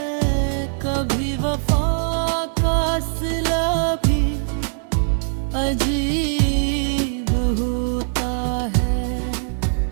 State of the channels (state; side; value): silent; left; 65 dB below the other